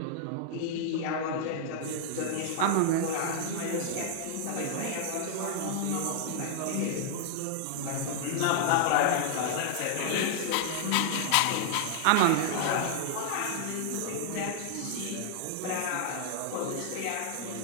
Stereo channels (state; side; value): different; both; correlation -0.01